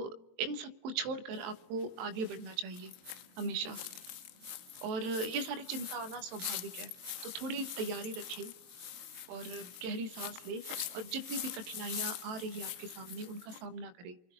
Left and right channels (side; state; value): left; late; 22 ms